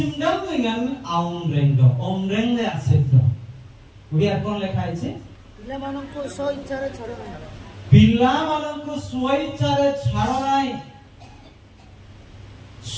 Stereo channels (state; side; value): identical; both; correlation 1.00